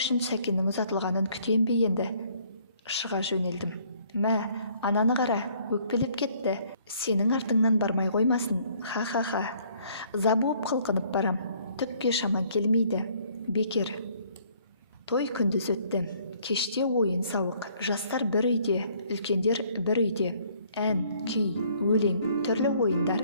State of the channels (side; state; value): both; inverted; correlation -0.62